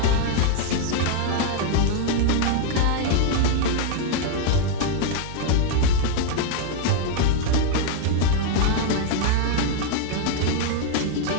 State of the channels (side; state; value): both; different; correlation 0.00